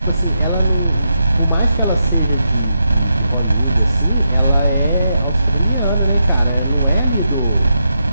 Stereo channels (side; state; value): both; inverted; correlation -0.84